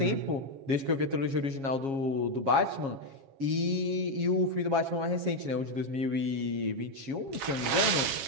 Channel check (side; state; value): left; late; 7.3 ms